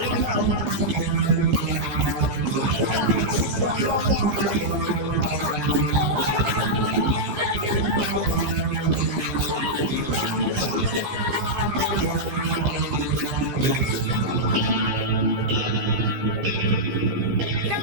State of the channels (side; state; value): left; late; 15 ms